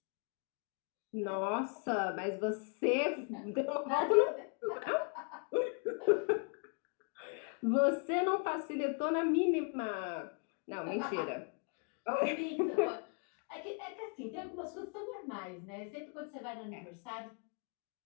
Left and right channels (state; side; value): quieter; right; 38.4 dB